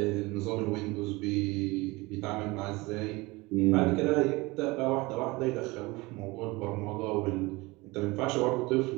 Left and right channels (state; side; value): quieter; left; 22.8 dB